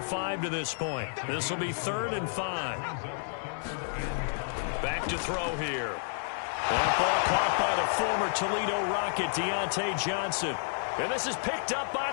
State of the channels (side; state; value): right; silent; digital silence